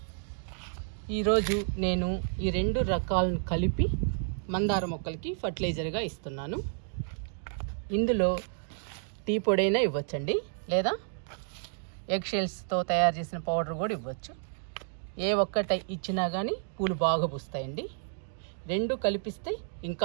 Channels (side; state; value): left; silent; digital silence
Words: ఈరోజు నేను ఈ 2 రకాలను కలిపి మందార మొక్కలకి ఫర్టిలైజర్గా ఇస్తున్నాను. ఇందులో టీ పొడైనా ఇవ్వచ్చండి, లేదా ఎగ్ షెల్స్తో తయారు చేసిన పౌడర్ కూడా ఇవ్వచ్చు. ఏ ఒక్కటి ఇచ్చినా కానీ పూలు బాగా పూస్తాయండి. 2 కలిపిస్తే